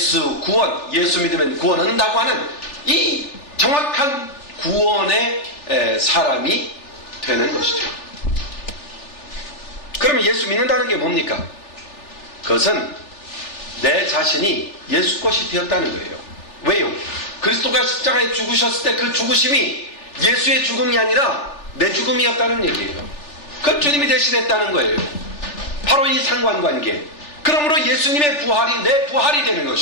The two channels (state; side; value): late; right; 3.4 ms